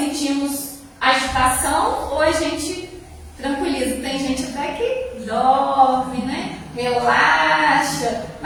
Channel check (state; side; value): identical; both; correlation 1.00